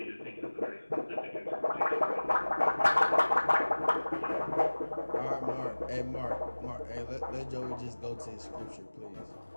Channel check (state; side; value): inverted; both; correlation -1.00